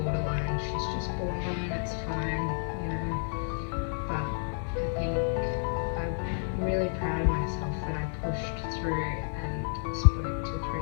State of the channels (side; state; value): right; silent; digital silence